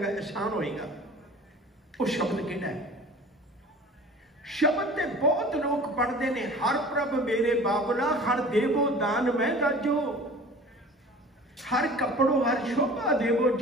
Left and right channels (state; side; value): normal; both; correlation 0.42